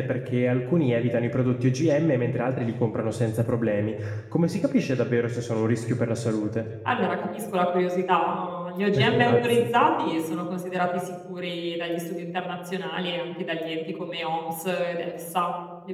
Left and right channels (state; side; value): identical; both; correlation 1.00